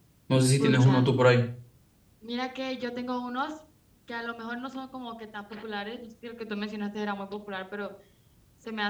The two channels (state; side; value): identical; both; correlation 1.00